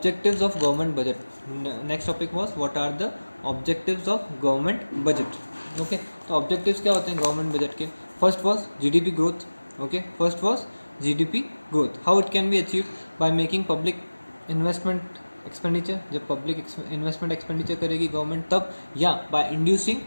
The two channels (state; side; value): inverted; both; correlation -1.00